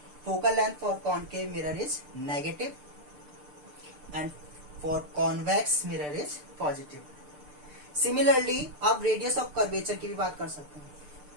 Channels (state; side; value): late; left; 6.7 ms